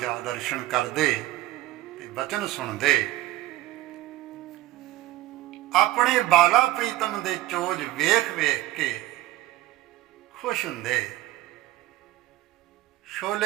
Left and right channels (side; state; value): left; quieter; 15.7 dB